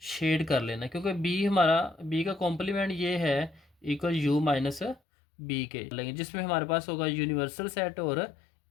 शेड कर लेना है, क्योंकि b हमारा b का कॉम्प्लीमेंट ये है इक्वल u माइनस बी के लेंगे, जिसमें हमारे पास होगा यूनिवर्सल सेट और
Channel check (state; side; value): drops out; right; at 5.0 s